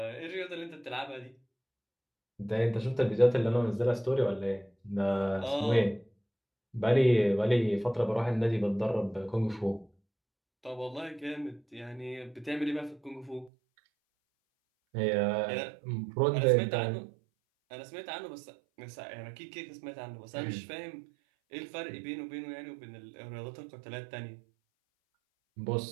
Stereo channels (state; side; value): drops out; left; at 13.5 s